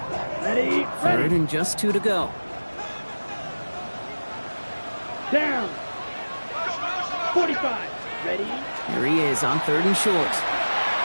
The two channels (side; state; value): both; inverted; correlation -1.00